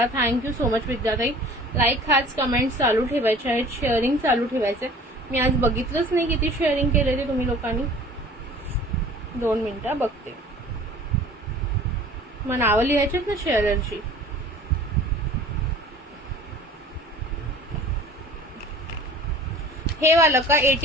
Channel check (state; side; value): normal; both; correlation 0.46